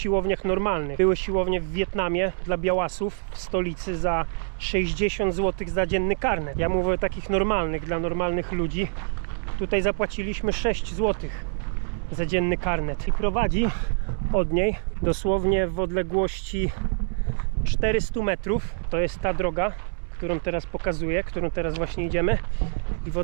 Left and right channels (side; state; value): left; silent; 61 dB below the other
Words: normalnych. Były siłownie w Wietnamie dla białasów w stolicy za 60 zł za dzienny karnet. Ja mówię o takich normalnych, dla normalnych ludzi. Tutaj zapłaciliśmy 6 zł za dzienny karnet. I prowadzi od niej dosłownie w odległości 400 metrów. To jest ta droga, którą teraz pokazuję, którą teraz właśnie idziemy. I w